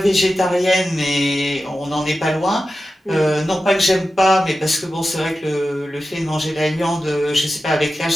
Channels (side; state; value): both; normal; correlation 0.93